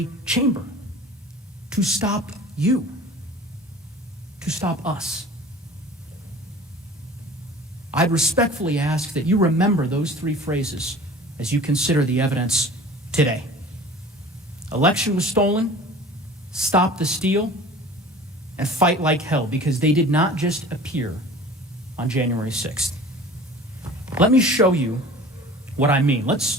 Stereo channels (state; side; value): normal; both; correlation 0.43